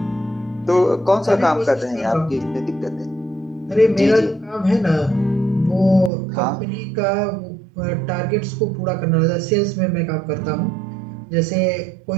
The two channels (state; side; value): drops out; left; at 6.1 s